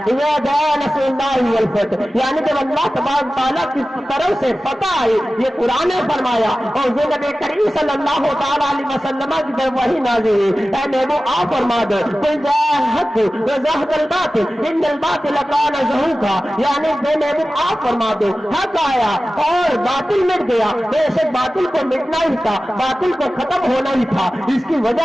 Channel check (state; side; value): normal; both; correlation 0.95